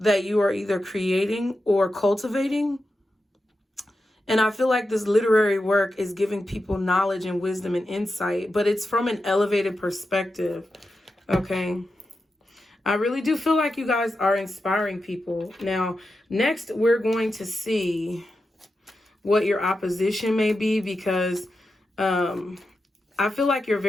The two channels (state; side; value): normal; both; correlation 0.90